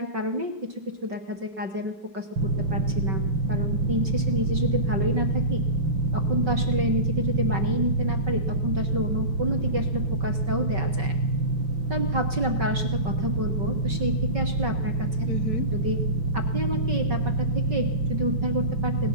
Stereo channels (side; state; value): left; late; 5.3 ms